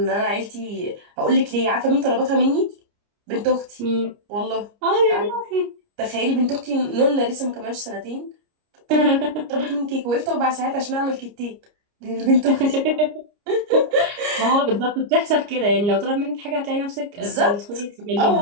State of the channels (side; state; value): left; late; 29 ms